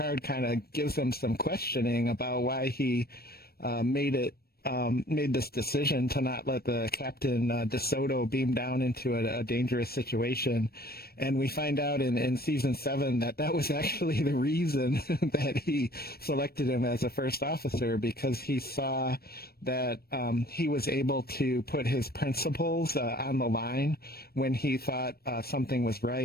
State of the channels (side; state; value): right; late; 0.45 ms